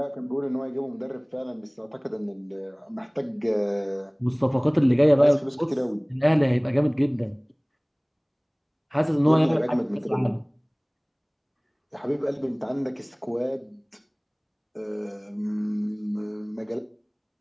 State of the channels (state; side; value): identical; both; correlation 1.00